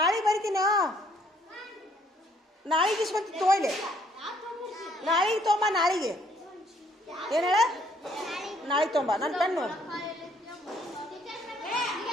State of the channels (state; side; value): normal; both; correlation 0.65